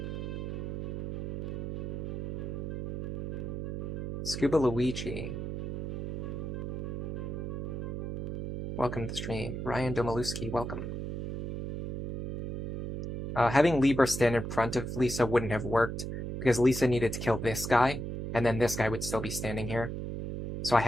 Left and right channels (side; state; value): right; noise; hum, 4 dB below the sound